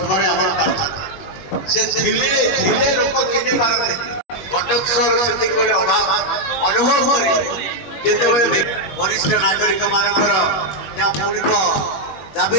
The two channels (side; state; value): right; late; 21 ms